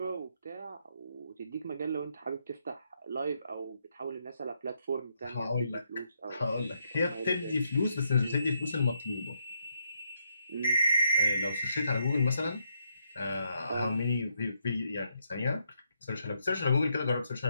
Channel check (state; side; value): inverted; both; correlation -0.78